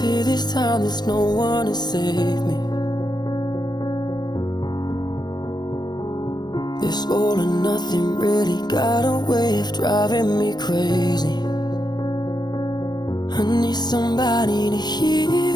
this time there's no one to save me. This all or nothing really got a way of driving me crazy. I need somebody to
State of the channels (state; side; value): late; right; 0.20 ms